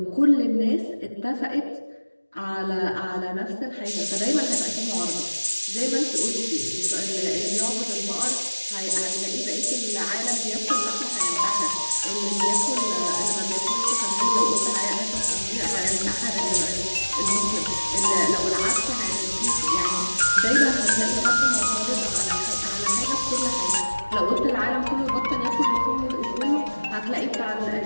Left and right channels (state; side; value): inverted; both; correlation -1.00